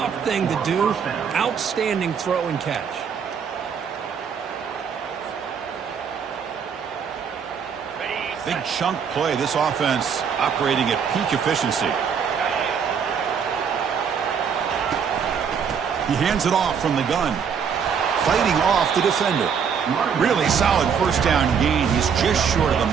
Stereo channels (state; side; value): quieter; left; 6.9 dB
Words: thing to do. Outstanding throw and catch. Big chunk play. This offense operating at peak efficiency. He hands it off from the gun. Fighting off the defender. Really solid 1st down gain. He's just short of